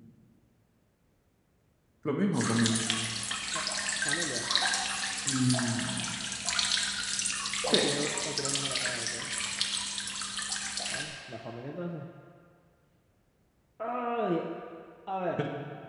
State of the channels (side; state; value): both; identical; correlation 1.00